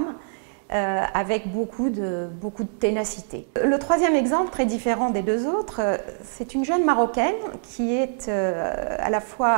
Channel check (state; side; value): silent; left; digital silence